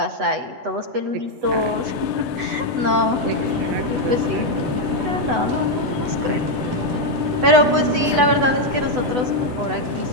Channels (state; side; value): late; left; 8.0 ms